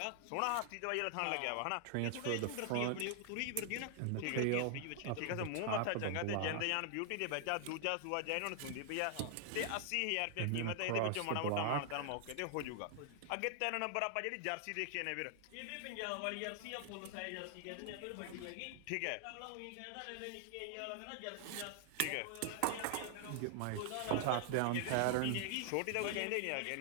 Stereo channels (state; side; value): different; both; correlation 0.00